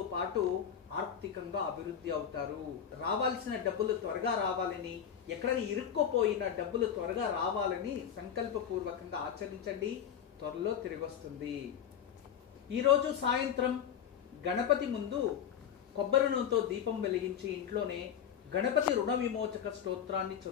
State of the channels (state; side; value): quieter; right; 8.7 dB